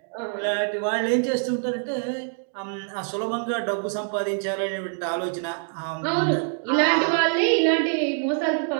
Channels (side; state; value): left; silent; 62 dB below the other